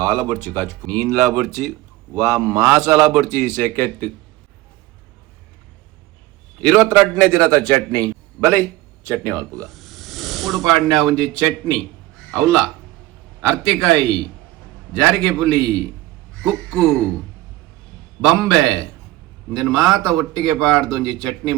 ಬರ್ಚಿ ಕಾಚು ನೀನ್ಲಾ ಬರ್ಚಿ ವಾ ಮಾಸಾಲ ಬರ್ಚಿ ಸೆಕೆಟ್ 22ನೇ ದಿನದ ಚಟ್ನಿ ಬಲೈ ಚಟ್ನಿ ಅಲ್ಪುಗ ಉಡುಪಾಡ್ನ ಒಂಜಿ ಚಟ್ನಿ ಅವಲ್ಲ ಅರ್ತಿಕಾಯಿ ಜಾರಿಗೆ ಪುಲಿ ಕುಕ್ಕು ಬಂಬೆ ಇಂದನ್ ಮಾತ ಒಟ್ಟಿಗೆ ಪಾಡ್ದು ಒಂಜಿ ಚಟ್ನಿ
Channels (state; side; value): quieter; left; 17.3 dB